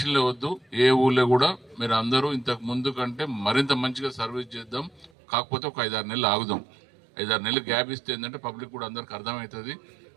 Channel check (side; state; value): left; drops out; at 5.1 s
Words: వద్దు. ఏ ఊళ్ళో కూడా మీరు అందరూ ఇంతకు ముందు కంటే మరింత మంచిగా సర్వీస్ చేద్దాం. కాకపోతే ఒక 5-6 నెలలు ఆగుదాం. 5-6 నెలలు గ్యాప్ ఇస్తే ఏంటంటే పబ్లిక్ కూడా అందరికి అర్థమవుతుంది.